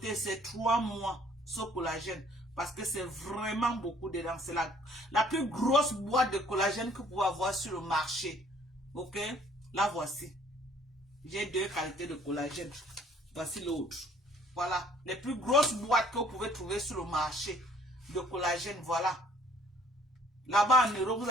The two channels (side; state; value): both; normal; correlation 0.58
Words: c'est 3 mois, ce collagène. Parce que c'est vraiment beaucoup dedans. C'est la plus grosse boîte de collagène que vous pouvez avoir sur le marché. Ok? La voici. J'ai 2 qualités de collagène. Voici l'autre. Voilà. Les plus grosses boîtes que vous pouvez trouver sur le marché de collagène. Voilà. Là-bas en Europe, vous